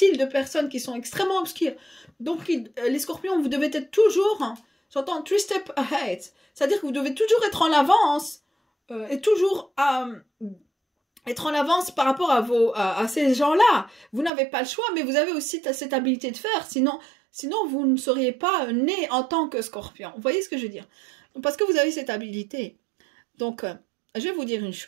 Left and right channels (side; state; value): left; drops out; at 14.3 s